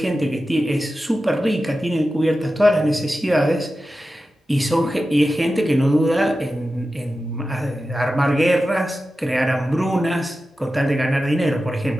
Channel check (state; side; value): normal; both; correlation 0.93